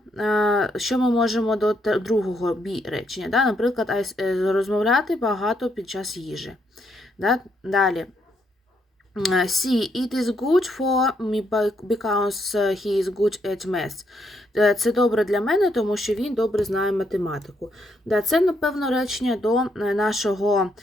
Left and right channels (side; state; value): both; normal; correlation 0.75